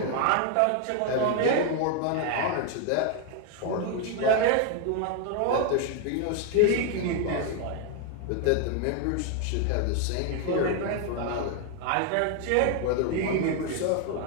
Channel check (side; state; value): both; different; correlation 0.00